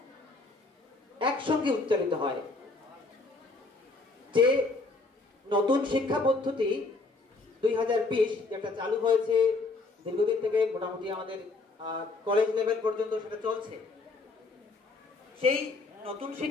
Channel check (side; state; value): right; quieter; 3.6 dB